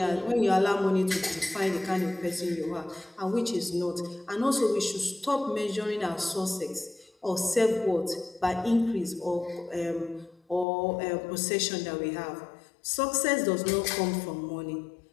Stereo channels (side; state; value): right; drops out; at 10.7 s